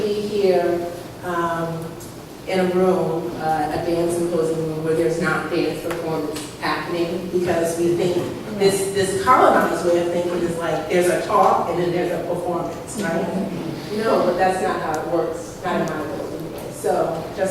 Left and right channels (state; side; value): identical; both; correlation 1.00